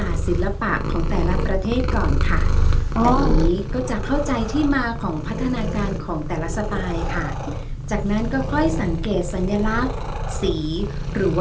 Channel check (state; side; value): identical; both; correlation 1.00